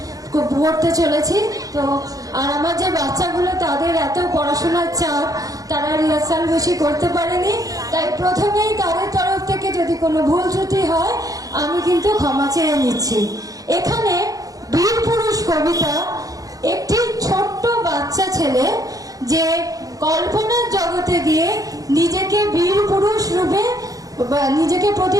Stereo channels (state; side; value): late; left; 0.17 ms